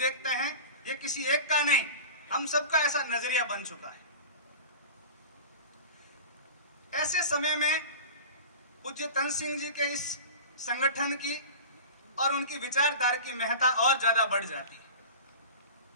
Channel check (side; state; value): both; inverted; correlation -0.34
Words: हैं। ये किसी एक का नहीं, हम सबका ऐसा नजरिया बन चुका है। ऐसे समय में पूज्य तन सिंह जी के इस संगठन की और उनकी विचारधारा की महत्ता और ज्यादा बढ़ जाती है।